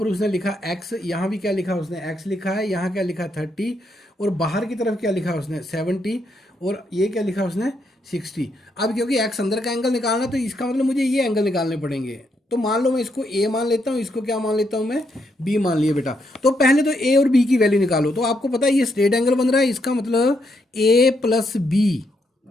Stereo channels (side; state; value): both; normal; correlation 0.78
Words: उसने लिखा x, यहाँ भी क्या लिखा उसने x लिखा है। यहाँ क्या लिखा 30, और बाहर की तरफ क्या लिखा उसने 70, और ये क्या लिखा उसने 60। अब क्योंकि x अंदर का एंगल निकालना, तो इसका मतलब मुझे ये एंगल निकालने पड़ेंगे। तो मान लो मैं इसको a मान लेता हूँ, इसको क्या मान लेता हूँ मैं, b मान लिया बेटा। तो पहले तो a और b की वैल्यू निकालो। तो आपको पता है ये स्ट्रेट एंगल बन रहा है, इसका मतलब a plus b,